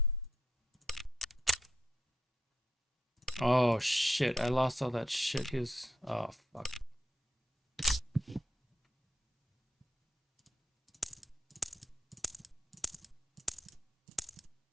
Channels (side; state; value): both; normal; correlation 0.80